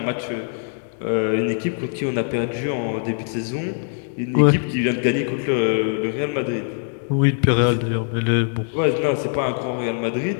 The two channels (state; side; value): silent; right; 57 dB below the other